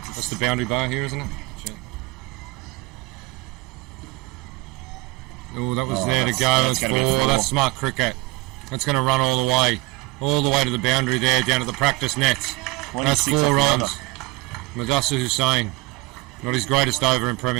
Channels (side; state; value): left; quieter; 23.6 dB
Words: That's the boundary bar here, isn't it? Oh, that was there to go. That's 4. That's smart cricket. That's going to run all the way to the boundary there, down to the practice nets. That's 4 runs. Madassa Hussain, not his greatest over in